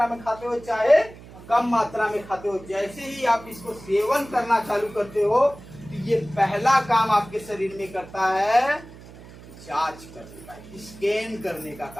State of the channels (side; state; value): right; noise; hum, 18 dB below the sound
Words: में खाते हो चाहे कम मात्रा में खाते हो, जैसे ही आप इसको सेवन करना चालू करते हो तो ये पहला काम आपके शरीर में करता है, जांच करने का, स्कैन करने का